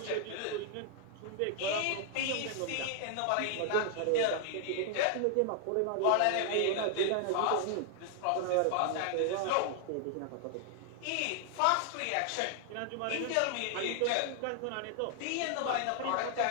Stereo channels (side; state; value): both; different; correlation 0.00